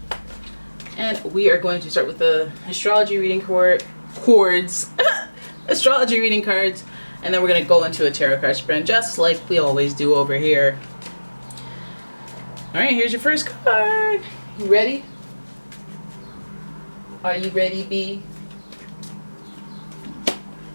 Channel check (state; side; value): inverted; both; correlation -1.00